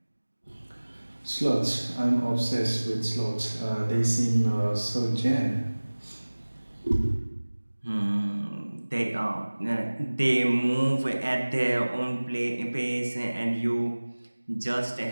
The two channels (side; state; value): both; inverted; correlation -1.00